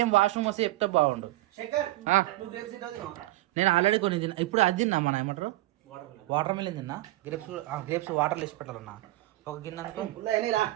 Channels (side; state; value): left; quieter; 17.9 dB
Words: వాష్రూమ్ వస్తే చెప్తే బాగుండు. నేను ఆల్రెడీ కొన్ని తిన్నా, ఇప్పుడు అది తిన్నా. మన ఏమంటారు వాటర్ మిలన్ తిన్నా. గ్రేప్స్ వాటర్లో వేసి పెట్టాలన్నా. ఒక గిన్నె అనుకో